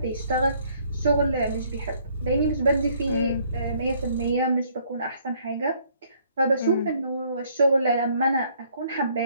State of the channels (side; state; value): both; inverted; correlation -0.64